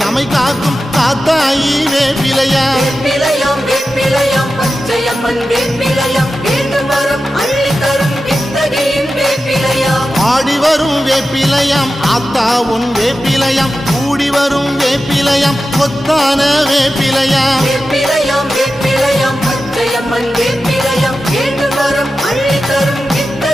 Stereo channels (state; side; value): normal; both; correlation 0.92